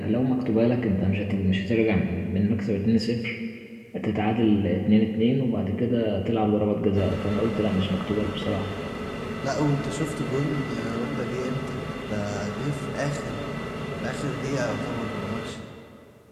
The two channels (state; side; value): identical; both; correlation 1.00